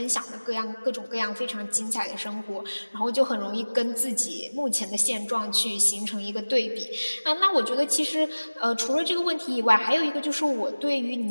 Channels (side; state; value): both; inverted; correlation -1.00